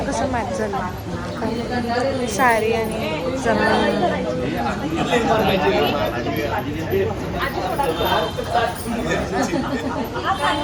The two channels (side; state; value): both; identical; correlation 1.00